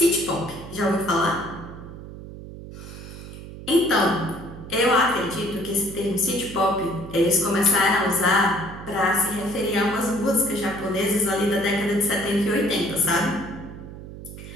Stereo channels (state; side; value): noise; right; hum, 13 dB below the sound